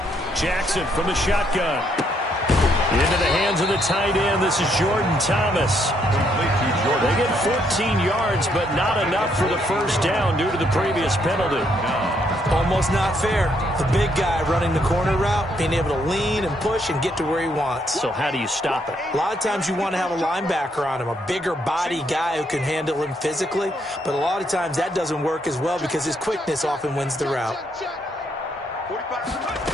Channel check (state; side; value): normal; both; correlation 0.73